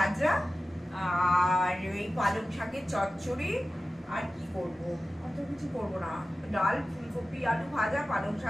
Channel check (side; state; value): both; normal; correlation 0.95